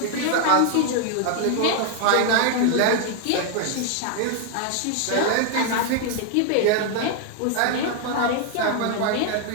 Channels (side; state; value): both; different; correlation 0.00